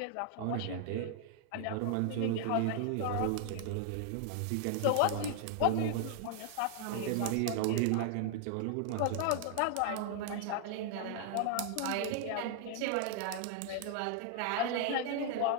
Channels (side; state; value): both; different; correlation 0.00